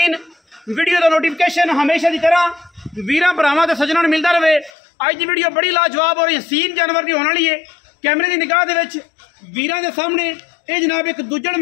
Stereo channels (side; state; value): right; drops out; at 4.7 s